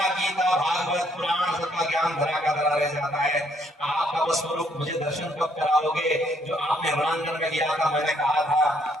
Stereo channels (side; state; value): both; normal; correlation 0.68